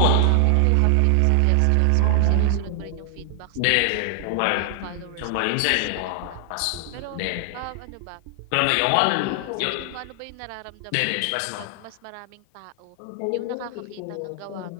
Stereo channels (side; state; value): both; different; correlation 0.00